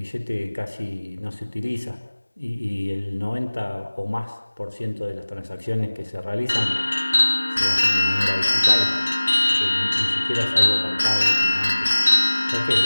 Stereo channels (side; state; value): both; inverted; correlation -1.00